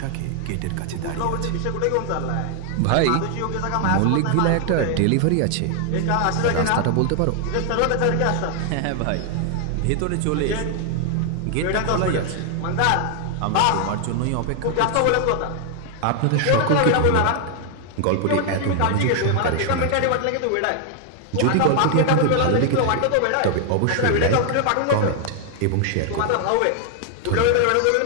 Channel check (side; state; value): both; different; correlation 0.00